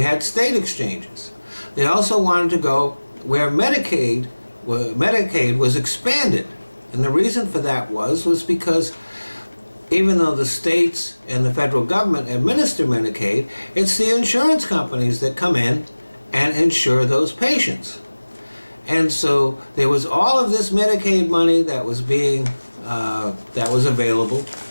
had state exchanges. They also wanted to go where Medicaid was expanded. And the reason for that was because even though the states and the federal government administer Medicaid, it's the insurance companies that come in and insure those patients. And so there was all of this Medicaid money that was available.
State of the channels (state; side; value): inverted; both; correlation -1.00